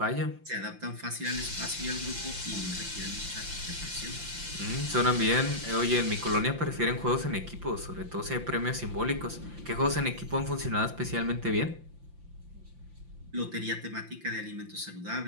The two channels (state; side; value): late; left; 5.8 ms